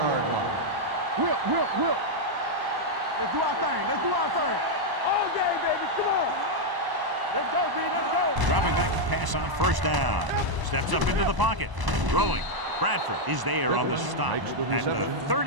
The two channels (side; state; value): left; late; 1.0 ms